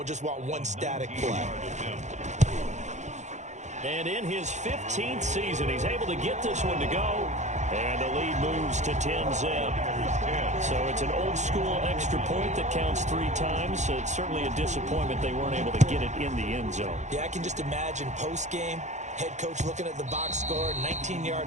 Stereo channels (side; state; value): left; late; 0.34 ms